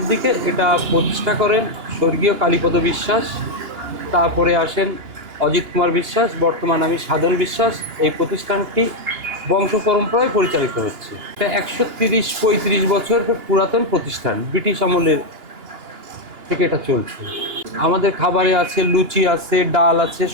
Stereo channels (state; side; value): late; left; 2.9 ms